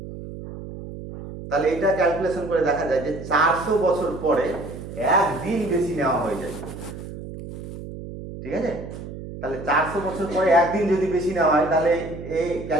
তাহলে এটা ক্যালকুলেশন করে দেখা যায় যে 400 বছর পরে একদিন বেশি নেওয়া হয়ে যায়, ঠিক আছে? তাহলে 400 বছর পরে একদিন যদি বেশি নেওয়া হয়, তাহলে এই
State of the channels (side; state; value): right; noise; hum, 11 dB below the sound